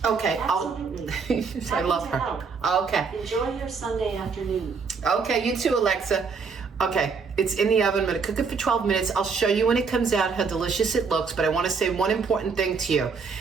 Okay, Absolutely. I love her. Help. Okay. Enjoy your Sunday afternoon. Okay, you too, Alexa. Okay, it's in the oven. I'm going to cook it for 12 minutes. I'll show you when it comes out how delicious it looks, but I want to say one important thing to you.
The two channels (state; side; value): quieter; left; 5.2 dB